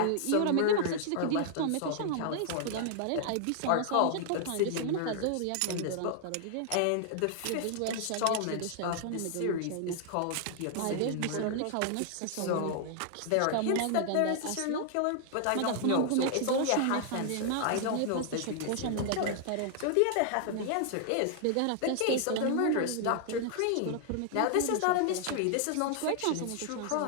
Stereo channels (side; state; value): both; different; correlation 0.00